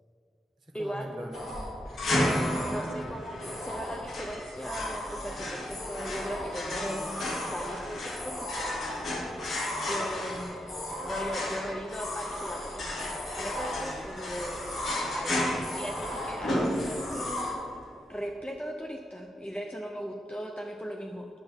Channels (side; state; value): both; normal; correlation 0.81